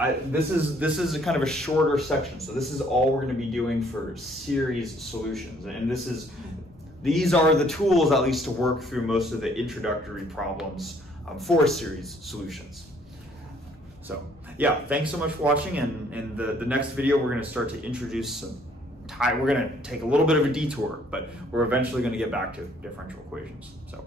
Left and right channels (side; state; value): both; normal; correlation 0.62